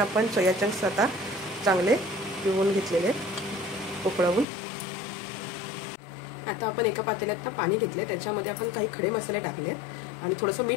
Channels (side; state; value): right; drops out; at 4.5 s